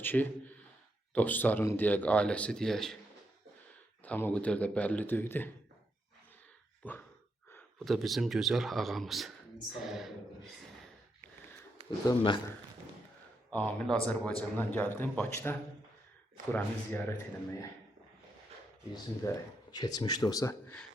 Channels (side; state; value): both; normal; correlation 0.81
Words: dostların deyək, ailəsi deyək. Tam o qədər də bəlli deyildi. Bu da bizim gözəl ağamız. Bu da mən. Amil Azərbaycandan gəldim, Bakıda buranı ziyarət etməyə. Bizim də keçmişdə olsa